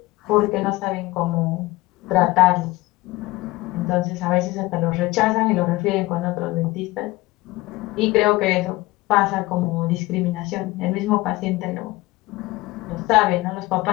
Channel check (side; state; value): right; quieter; 20.2 dB